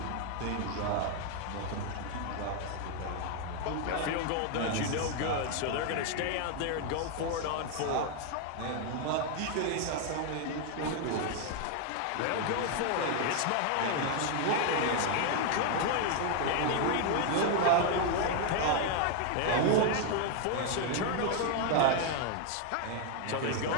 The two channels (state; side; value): different; both; correlation 0.00